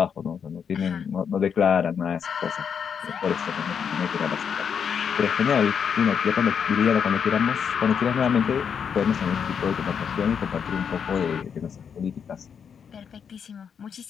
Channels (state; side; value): quieter; right; 7.2 dB